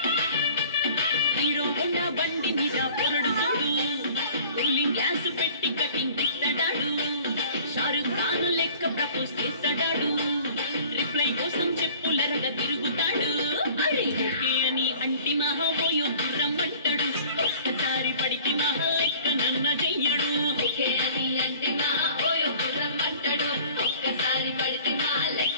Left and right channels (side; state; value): both; inverted; correlation -0.49